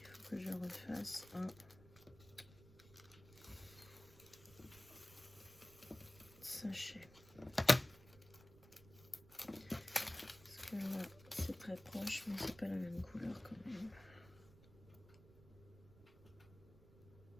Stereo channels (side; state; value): right; noise; rumble, 21 dB below the sound